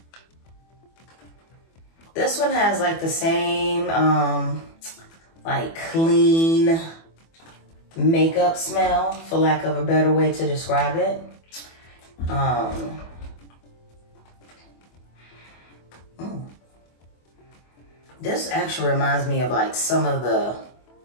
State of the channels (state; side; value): late; right; 24 ms